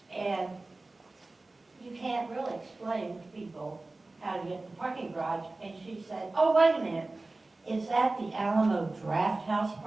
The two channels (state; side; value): quieter; left; 3.1 dB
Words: And you can't really explain to people how to get to the parking garage. And she said, oh, wait a minute. Is that the Alamo Draft House